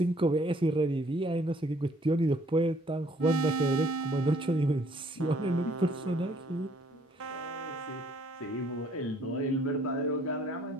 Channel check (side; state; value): both; normal; correlation 0.62